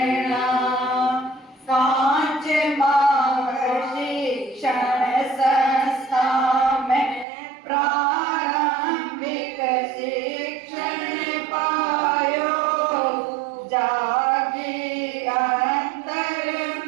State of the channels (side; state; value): left; drops out; at 7.2 s